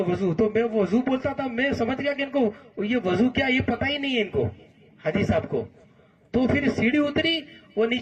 وضو. تو میں وضو بولتا تھا، میں سمجھ گیا کہ ان کو یہ وضو کیا یہ پتہ ہی نہیں ہے ان کو حاجی صاحب کو. تو پھر سیڑھی اتری، وہ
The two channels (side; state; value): both; identical; correlation 1.00